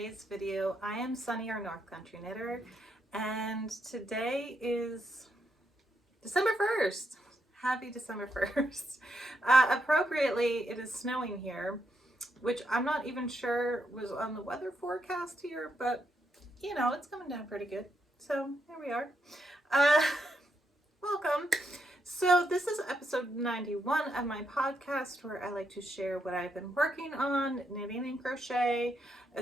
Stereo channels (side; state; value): both; normal; correlation 0.80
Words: video. I am Sunny, your North Country Knitter, and today is December 1st. Happy December 1st. Appropriately, it is snowing here, which I'm not even sure was on the weather forecast here, but you know, it's coming down pretty good. So here we are. Welcome. So this is episode 91 of my podcast, where I like to share what I've been working on, knitting and crochet,